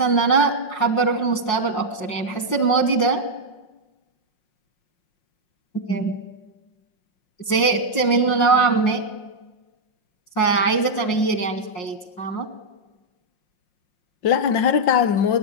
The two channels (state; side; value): late; right; 5.6 ms